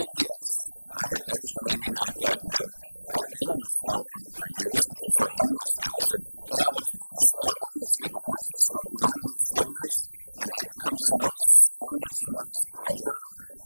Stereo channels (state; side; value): inverted; both; correlation -1.00